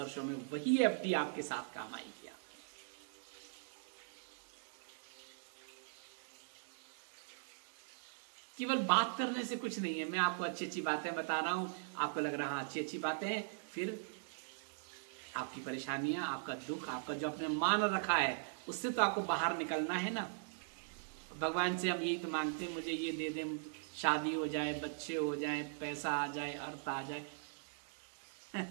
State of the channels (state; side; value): silent; left; digital silence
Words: में, वही एफडी आपके साथ काम आएगी। केवल बात करने से कुछ नहीं है। मैं आपको अच्छी अच्छी बातें बता रहा हूं, आपको लग रहा है अच्छी अच्छी बातें हैं, फिर आपकी परेशानियां, आपका दुख, आपका जो आपने मान रखा है, उससे तो आपको बाहर निकलना है ना। भगवान से हम यही तो मांगते हैं, मुझे ये दे दें, शादी हो जाए, बच्चे हो जाए, पैसा आ जाए, अर्थ आ जाए।